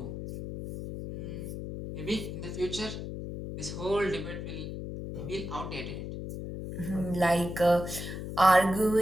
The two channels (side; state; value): left; noise; hum, 7 dB below the sound